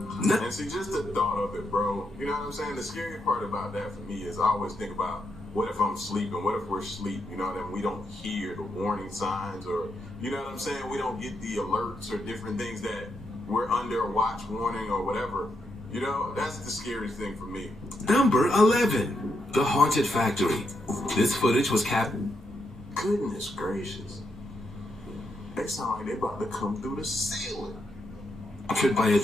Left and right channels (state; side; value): normal; both; correlation 0.81